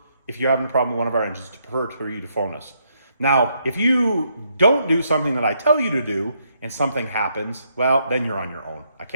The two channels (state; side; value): inverted; both; correlation -0.75